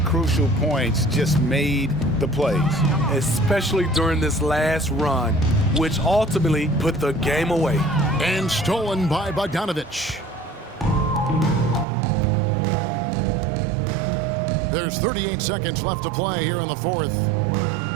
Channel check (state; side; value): drops out; left; at 11.9 s